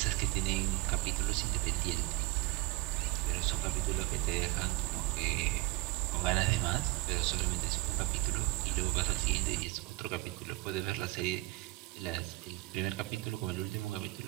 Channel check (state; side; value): quieter; left; 19.8 dB